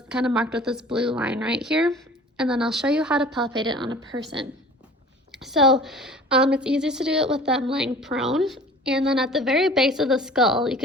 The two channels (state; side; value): normal; both; correlation 0.45